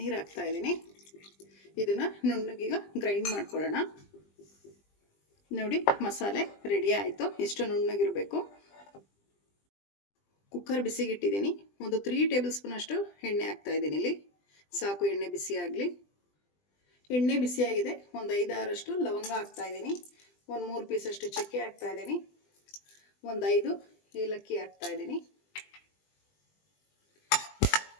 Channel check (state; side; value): late; right; 20 ms